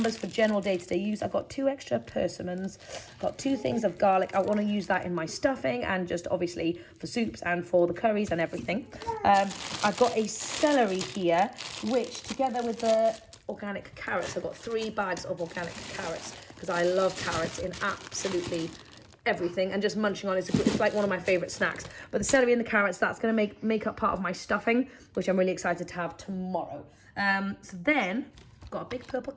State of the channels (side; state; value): both; identical; correlation 1.00